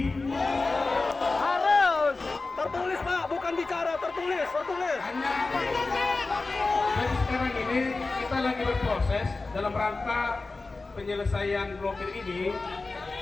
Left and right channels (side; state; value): right; quieter; 3.6 dB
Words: Harus tertulis Pak, bukan bicara, tertulis. Hanya jadi sekarang ini kita lagi berproses dalam rangka penyelesaian blokir ini.